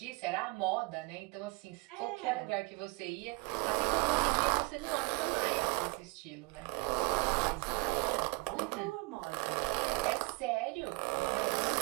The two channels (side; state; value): left; quieter; 27.5 dB